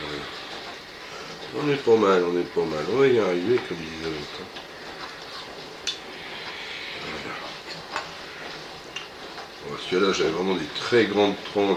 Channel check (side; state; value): both; identical; correlation 1.00